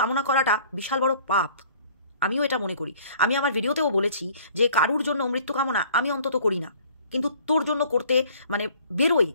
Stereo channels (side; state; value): both; inverted; correlation -0.54